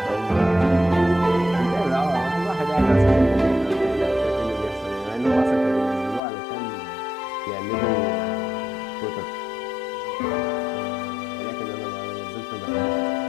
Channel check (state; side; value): drops out; right; at 6.2 s